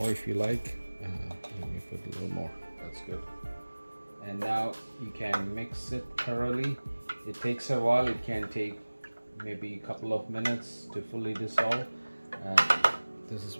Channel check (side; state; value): both; inverted; correlation -1.00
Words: if you like. Let me put a little more. That's good. And now you can mix it thoroughly. It takes a while. It can take maybe a couple of minutes to fully dissolve. This is